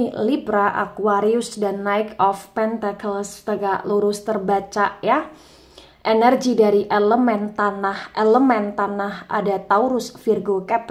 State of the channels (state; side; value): identical; both; correlation 1.00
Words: Libra, Aquarius, dan Knight of Pentacles tegak lurus terbaca ya. Energi dari elemen tanah ada Taurus, Virgo,